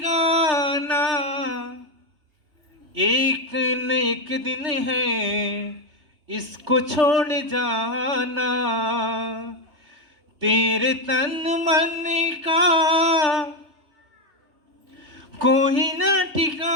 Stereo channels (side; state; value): left; late; 3.3 ms